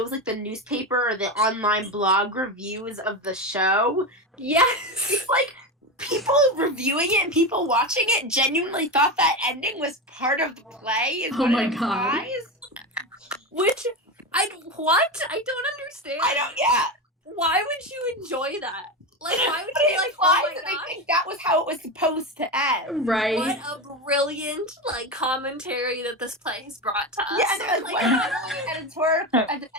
like the newspaper or the online blog reviews of the show, it's like people reviewing it and people watching it genuinely thought that ending was part of the play. Oh my god! Which I don't understand. Why would you enjoy that? Like, why would you be like, oh my god? They think that was how it was supposed to end. Right. What a brilliant like commentary that this play has brought to us. Yeah, and there's like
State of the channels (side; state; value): both; normal; correlation 0.18